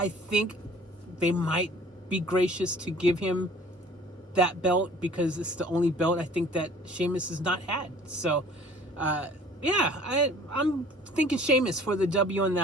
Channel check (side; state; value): both; normal; correlation 0.50